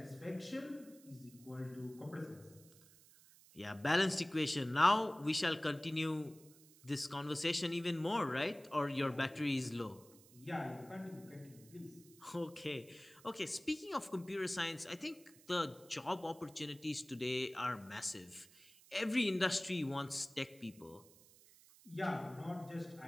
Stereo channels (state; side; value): noise; right; hiss, 23 dB below the sound